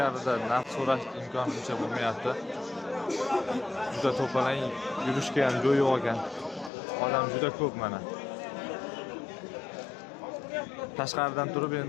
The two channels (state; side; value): drops out; right; at 6.7 s